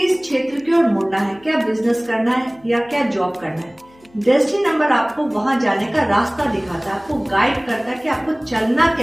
क्षेत्र की ओर मुड़ना है, क्या बिजनेस करना है या क्या जॉब करना है। डेस्टिनी नंबर आपको वहां जाने का रास्ता दिखाता है, आपको गाइड करता है कि आपको चलना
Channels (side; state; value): left; noise; hum, 29 dB below the sound